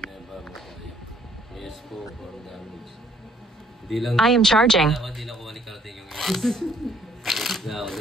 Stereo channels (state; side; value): normal; both; correlation 0.64